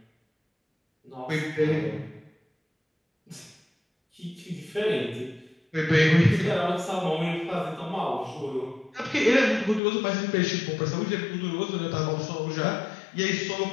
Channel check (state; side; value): drops out; right; at 9.8 s